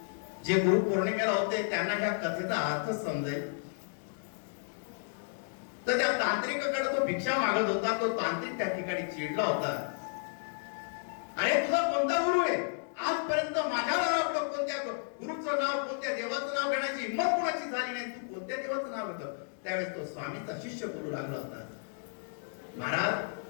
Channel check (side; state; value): right; silent; digital silence